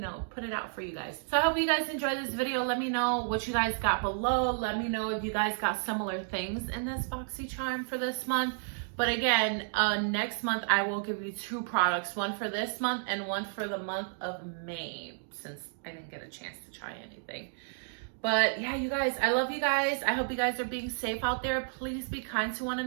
put it out for you guys. So I hope you guys enjoyed this video. Let me know what you guys got below. Let me know if you guys got similar things in this BoxyCharm for this month. But again, next month I will give you 2 products, one for this month and one for the month of May, since I didn't get a chance to try anything. But yeah, you guys, I love you guys. I hope you guys are being safe out there. Please be kind to one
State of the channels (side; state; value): left; silent; digital silence